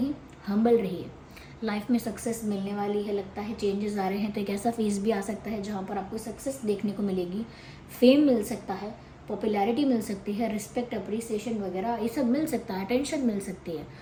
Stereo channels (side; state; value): both; identical; correlation 1.00